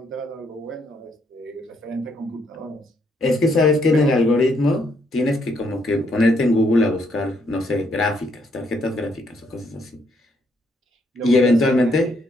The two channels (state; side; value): normal; both; correlation 0.72